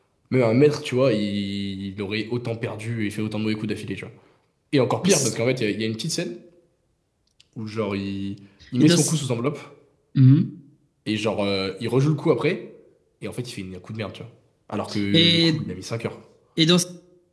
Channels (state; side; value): identical; both; correlation 1.00